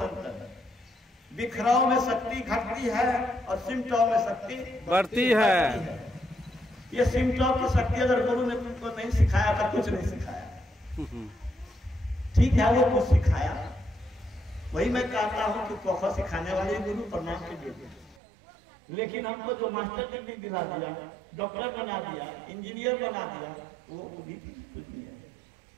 अंतर है। बिखराव में शक्ति घटती है और सिमटाव में शक्ति बढ़ती है। ये सिमटाव की शक्ति अगर गुरु ने तुमको नहीं सिखाया तो कुछ नहीं सिखाया। ठीक है, वो कुछ सिखाया। वही मैं कहता हूँ कि कोखा सिखाने वाले गुरु प्रणाम कीजिए। लेकिन हमको जो मास्टर डिग्री दिला दिया, डॉक्टर बना दिया, इंजीनियर बना दिया, वो भी कुछ नहीं है।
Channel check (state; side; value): drops out; left; at 18.2 s